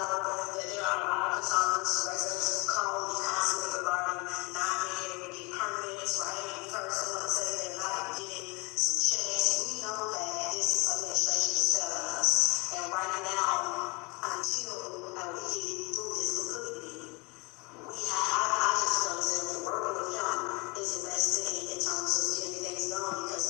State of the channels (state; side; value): quieter; right; 27.5 dB